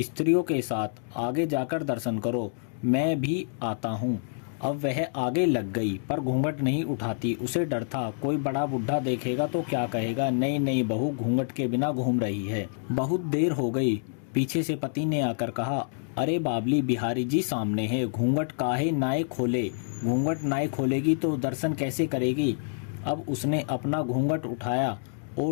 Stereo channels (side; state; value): right; silent; digital silence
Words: के साथ आगे जाकर दर्शन करो, मैं भी आता हूँ। अब वह आगे लग गई, पर घूंघट नहीं उठाती। उसे डर था, कोई बड़ा बुढ़ा देखेगा तो क्या कहेगा, नई नई बहू घूंघट के बिना घूम रही है। बहुत देर हो गई। पीछे से पति ने आकर कहा, अरे बाबली, बिहारी जी सामने है, घूंघट काहे नाए खोले? घूंघट नाए खोलेगी तो दर्शन कैसे करेगी? अब उसने अपना घूंघट उठाया